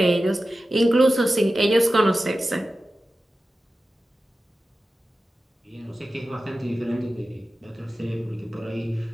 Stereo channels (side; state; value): both; normal; correlation 0.94